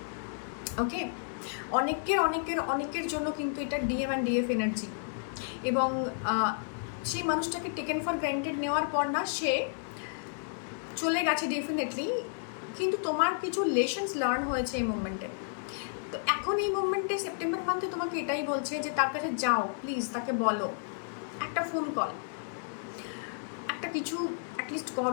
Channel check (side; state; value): right; silent; digital silence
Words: ওকে, অনেকের জন্য কিন্তু এটা ডিএম অ্যান্ড ডিএফ এনার্জি, এবং সেই মানুষটাকে টেকেন ফর গ্রান্টেড নেওয়ার পর না সে চলে গেছে ডেফিনেটলি, কিন্তু তোমার কিছু লেসন্স লার্ন হয়েছে এই মুভমেন্টে। তো এখন এই মুভমেন্টে সেপ্টেম্বর মান্থে তোমাকে এটাই বলছে যে তার কাছে যাও, প্লিজ তাকে বলো, একটা ফোন কল, একটা কিছু অ্যাটলিস্ট